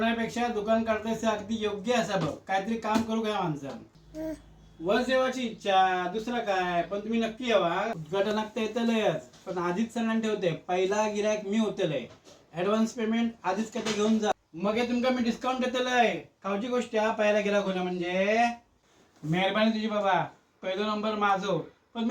दुकान काढतस हे अगदी योग्य असा बघ. काहीतरी काम करू घ्या माणसं. वर जेवायची इच्छा दुसरा काय, पण तुम्ही नक्की यावा. उद्घाटनात तर येतलंच, पण आधीच सणान ठेवते. पहिला गिरायक मी होतलंय. ऍडव्हान्स पेमेंट आधीच काय घेऊन जा. मग हे तुमका मी डिस्काउंट देतलंय. खाऊची गोष्ट हा पहिला गिरायक होणं म्हणजे. मेहरबानी तुझी बाबा. पहिलो नंबर माझो, पण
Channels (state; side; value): identical; both; correlation 1.00